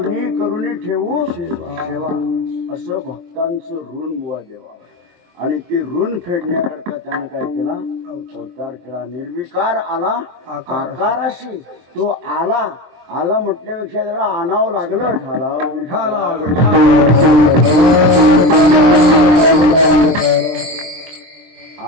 करुणी ठेवू सेवा. असं भक्तांचं ऋण बुवा देवावर. आणि ते ऋण फेडण्याकरता त्याने काय केला? अवतार केला. निर्विकार आला आकाराशी. तो आला आला म्हटल्यापेक्षा त्याला आणावं लागलं.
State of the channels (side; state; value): left; late; 23 ms